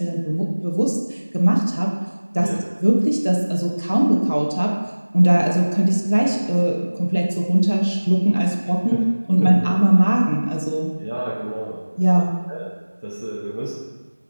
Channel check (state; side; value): inverted; both; correlation -1.00